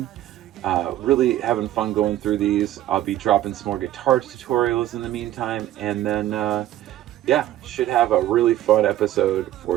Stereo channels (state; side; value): quieter; left; 13.3 dB